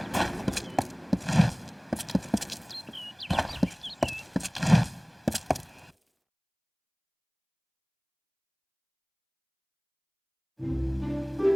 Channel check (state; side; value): identical; both; correlation 1.00